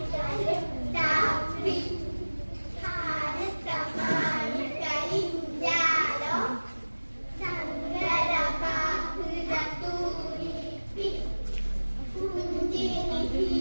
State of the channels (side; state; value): both; inverted; correlation -1.00